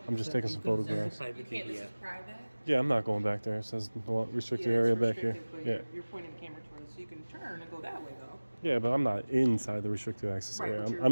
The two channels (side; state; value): both; inverted; correlation -1.00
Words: I'm just taking some photographs. You can't, this is private? Yeah, I'm not going back there. It says no restricted Yeah, area it's back here. restricted, but Yeah. you're pointing the camera towards, so you can turn and go that way, though. Yeah, but I'm not inside the restricted access area. but you're I'm